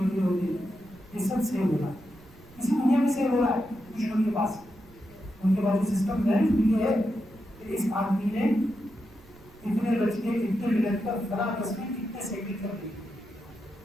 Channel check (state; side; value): noise; right; rumble, 24 dB below the sound